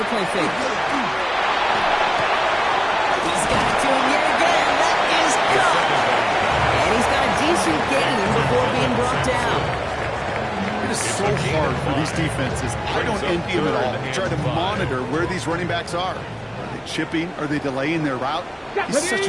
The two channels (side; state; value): both; identical; correlation 1.00